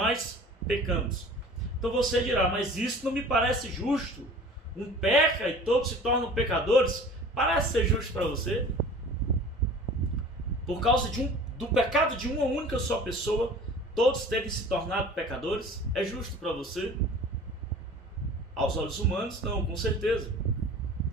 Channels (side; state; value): both; normal; correlation 0.43